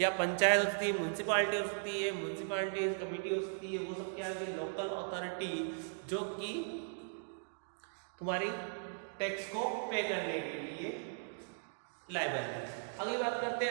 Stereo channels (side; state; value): left; silent; digital silence